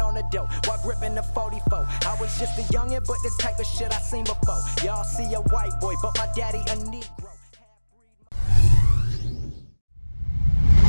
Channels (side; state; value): both; inverted; correlation -1.00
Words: the door while gripping the 44. I was just a youngin', but this type of shit I seen before. Y'all see a white boy, but my daddy a Negro.